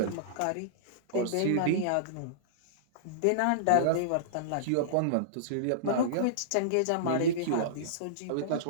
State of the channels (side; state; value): both; different; correlation -0.03